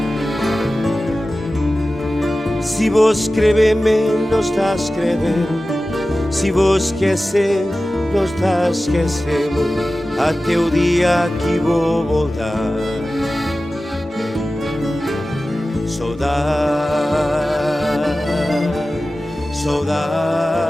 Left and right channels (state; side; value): normal; both; correlation 0.95